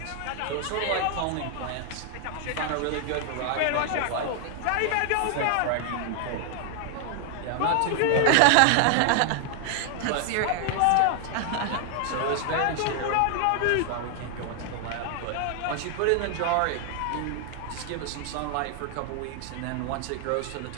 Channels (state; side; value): different; both; correlation 0.00